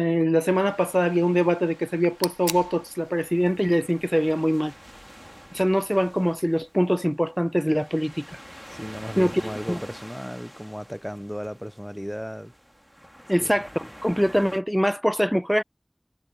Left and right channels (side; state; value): both; identical; correlation 1.00